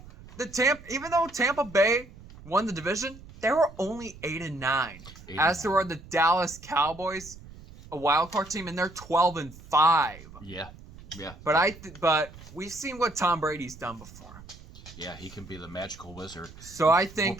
Tampa Bay won the division, they were only 8-9. As there were the Dallas Cowboys, a wild card team, and they're 12-5. Yeah. But we've seen what Tom Brady's done before. Yeah, he can be the magical wizard. So I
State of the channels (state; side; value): noise; right; rumble, 18 dB below the sound